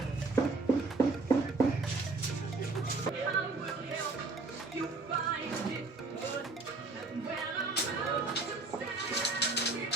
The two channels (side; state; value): left; quieter; 3.5 dB